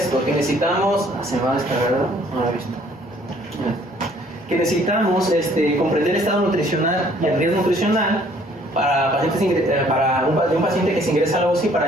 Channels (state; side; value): normal; both; correlation 0.60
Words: que necesitamos, se me va a descargar, no lo he visto, que necesitamos comprender el estado nutricional y el riesgo nutricional para un paciente que se ingresa a la UCI para